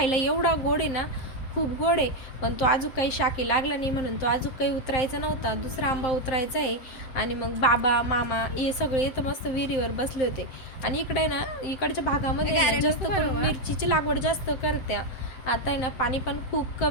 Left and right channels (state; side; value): late; right; 7.7 ms